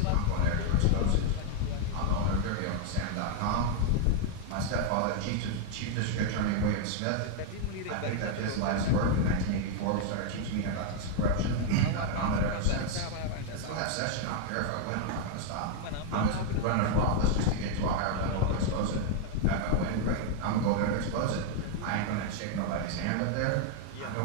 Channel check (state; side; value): different; both; correlation 0.00